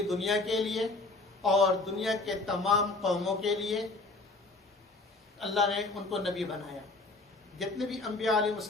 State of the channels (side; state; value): right; quieter; 3.3 dB